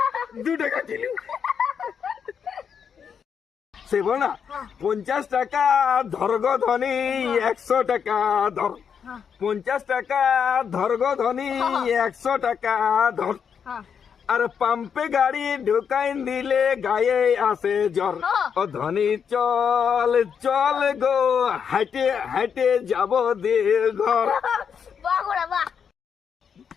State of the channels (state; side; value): quieter; right; 7.1 dB